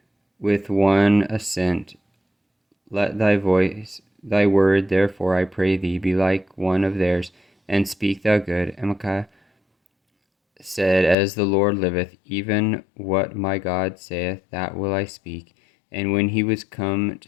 With one assent, let thy word, therefore, I pray thee, be like one of theirs, and speak thou good. And Micaiah said, As the Lord liveth, even what my God saith, that will I speak. And when he was come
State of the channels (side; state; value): right; drops out; at 11.2 s